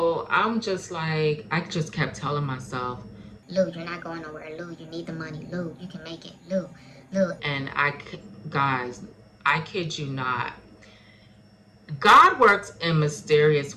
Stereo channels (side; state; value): both; identical; correlation 1.00